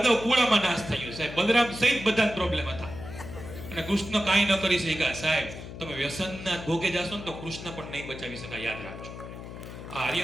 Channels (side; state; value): left; noise; hum, 11 dB below the sound